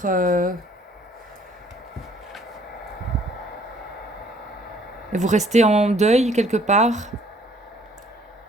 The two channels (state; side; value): normal; both; correlation 0.60